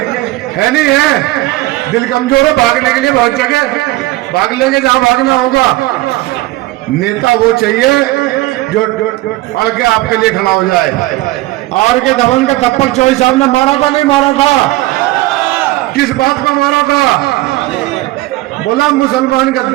है नहीं है? दिल कमजोर है, भागने के लिए बहुत जगह भाग लेंगे जहां भागना होगा। नेता वो चाहिए जो अड़ के आपके लिए खड़ा हो जाए। आर के धवन का थप्पड़ चौधरी साहब ने मारा था, नहीं मारा था? किस बात पर मारा था? बोला मुसलमान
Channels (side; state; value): left; quieter; 18.4 dB